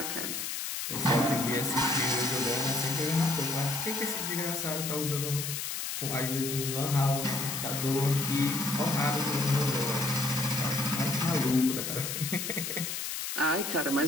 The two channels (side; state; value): left; noise; hiss, 4 dB below the sound